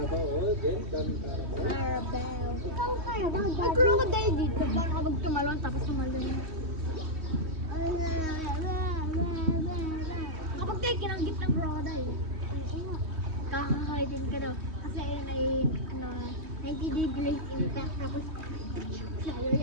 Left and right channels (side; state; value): left; late; 3.1 ms